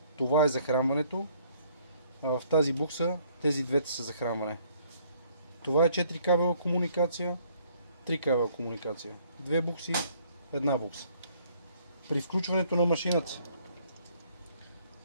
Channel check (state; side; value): inverted; both; correlation -0.63